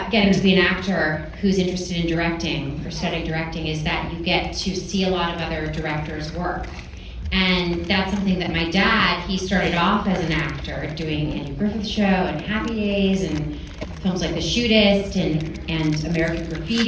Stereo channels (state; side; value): identical; both; correlation 1.00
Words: getting to be an actor who's interested in directing or studying directing is that you get to see a lot of other directors' work. And that's something that my dad, he started off as an actor doing Andy Griffith Show and Happy Days and films like The Shootist and American